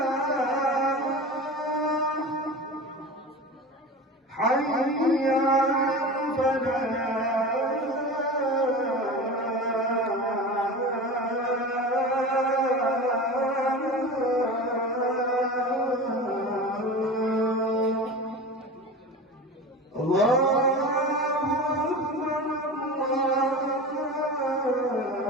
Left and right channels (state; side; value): normal; both; correlation 0.31